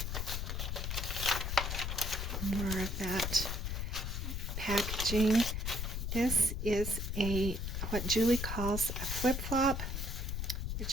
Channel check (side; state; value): left; noise; rumble, 2 dB below the sound